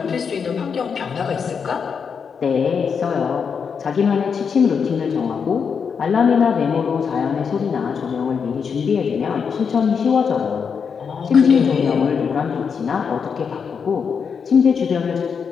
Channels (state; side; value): quieter; right; 6.3 dB